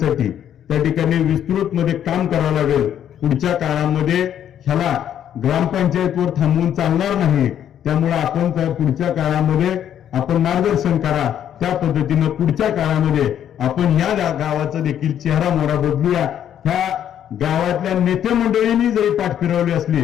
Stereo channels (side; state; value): right; quieter; 10.0 dB